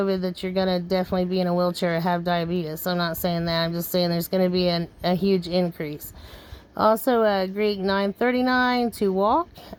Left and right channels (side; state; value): both; identical; correlation 1.00